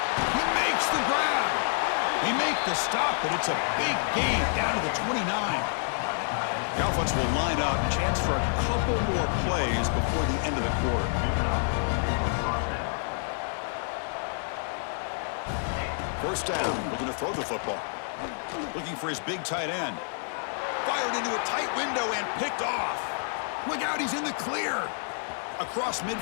He makes the grab. He makes the stop, but it's a big gain down to the 29. The offense will line up. Chance for a couple more plays before the end of the quarter. First down, looking to throw the football. Looking for his big tight end. Fired into a tight window and picked off. Look out, he's in the clear. Across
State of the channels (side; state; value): right; silent; digital silence